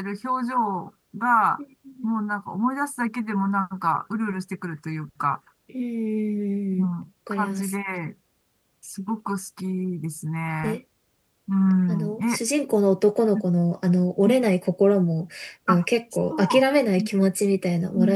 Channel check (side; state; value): both; identical; correlation 1.00